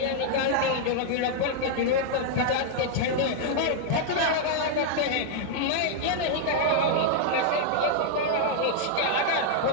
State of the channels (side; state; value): both; different; correlation -0.01